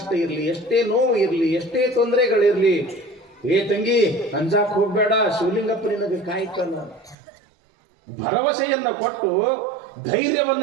ಇರಲಿ, ಎಷ್ಟೇ ನೋವು ಇರಲಿ, ಎಷ್ಟೇ ತೊಂದರೆಗಳಿರ್ಲಿ, ಏ ತಂಗಿ ಅಂಜಾಕ್ ಹೋಗ್ಬೇಡ, ಶಿವಲಿಂಗಪ್ಪ ನಿನಗೆ ಕಾಯ್ತಾನ. ಭರವಸೆಯನ್ನ ಕೊಟ್ಟು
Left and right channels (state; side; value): drops out; left; at 7.2 s